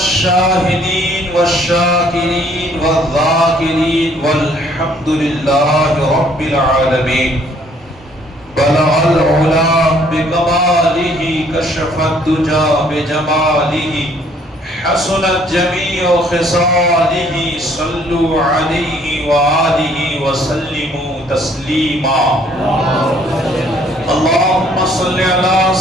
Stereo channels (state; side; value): normal; both; correlation 0.62